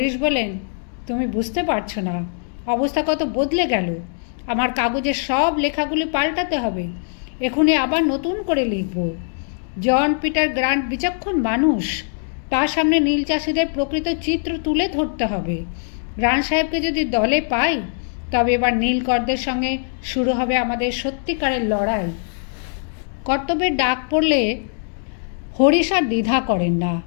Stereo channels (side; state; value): right; silent; 65 dB below the other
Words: বলেন, তুমি বুঝতে পারছো না, অবস্থা কত বদলে গেল। আমার কাগজের সব লেখাগুলি পাল্টাতে হবে। এখনই আবার নতুন করে লিখব। জন পিটার গ্রান্ট বিচক্ষণ মানুষ, তার সামনে নীল চাষিদের প্রকৃত চিত্র তুলে ধরতে হবে। গ্রান্ট সাহেবকে যদি দলে পাই, তবে এবার নীলকরদের সঙ্গে শুরু হবে আমাদের সত্যিকারের লড়াই। কর্তব্যের ডাক পড়লে হরিশ আর দ্বিধা করেন না।